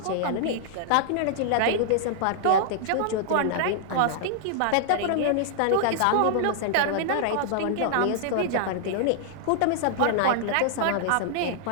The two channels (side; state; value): both; different; correlation -0.01